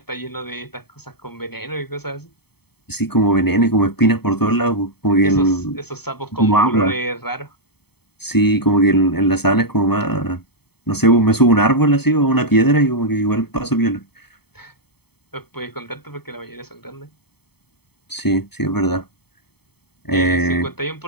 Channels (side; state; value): right; late; 0.97 ms